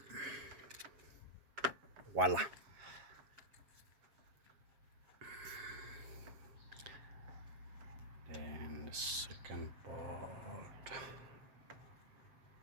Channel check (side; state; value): left; late; 7.6 ms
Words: Voila. Then the second bolt.